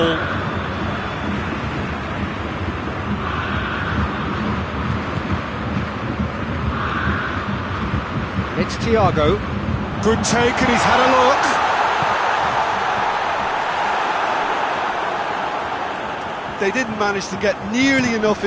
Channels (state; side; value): identical; both; correlation 1.00